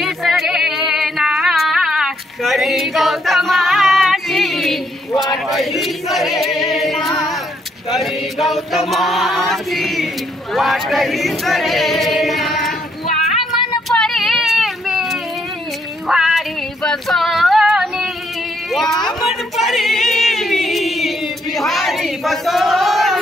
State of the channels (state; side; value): normal; both; correlation 0.72